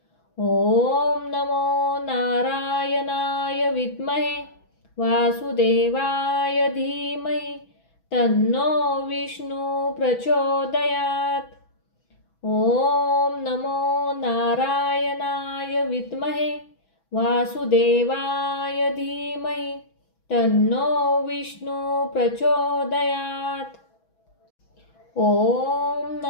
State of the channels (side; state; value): right; late; 6.1 ms